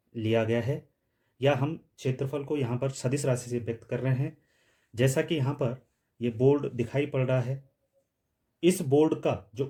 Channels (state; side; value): identical; both; correlation 1.00